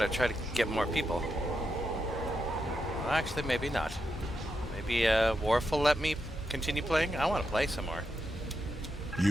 to try to get more people. Well, actually, maybe not. Maybe Worf will let me continue playing? I want to play some more.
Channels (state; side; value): normal; both; correlation 0.85